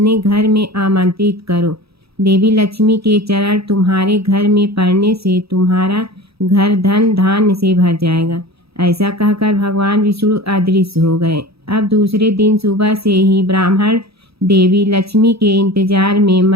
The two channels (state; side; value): late; left; 0.77 ms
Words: घर में आमंत्रित करो। देवी लक्ष्मी के चरण तुम्हारे घर में पड़ने से तुम्हारा घर धन धान्य से भर जाएगा। ऐसा कहकर भगवान विष्णु अदृश्य हो गए। अब दूसरे दिन सुबह से ही ब्राह्मण देवी लक्ष्मी के इंतजार में